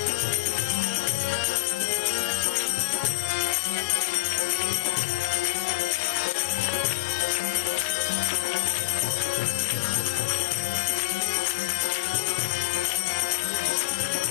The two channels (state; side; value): quieter; right; 20.4 dB